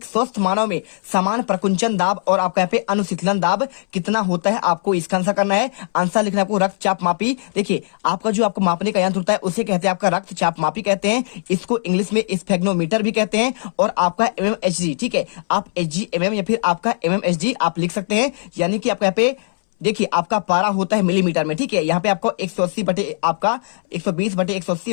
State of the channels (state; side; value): silent; right; 66 dB below the other